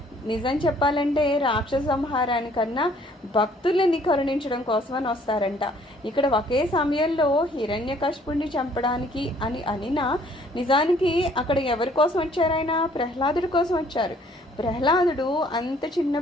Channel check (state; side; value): normal; both; correlation 0.60